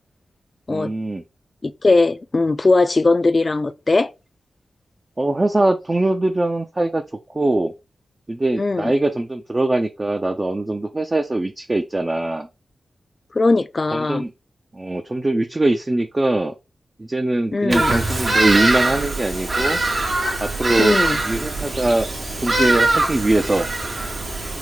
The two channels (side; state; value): both; normal; correlation 0.95